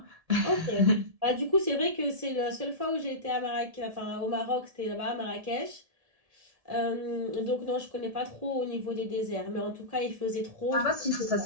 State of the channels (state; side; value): late; left; 1.7 ms